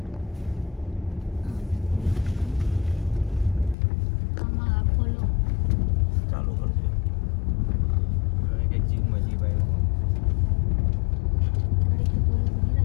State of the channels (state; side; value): drops out; right; at 3.8 s